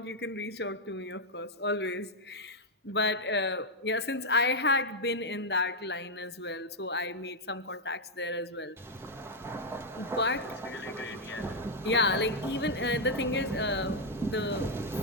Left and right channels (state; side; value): normal; both; correlation 0.00